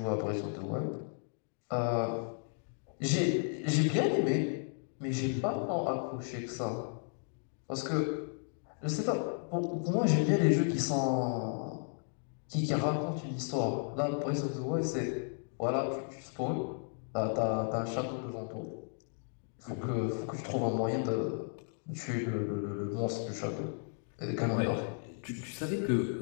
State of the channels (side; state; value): right; silent; 55 dB below the other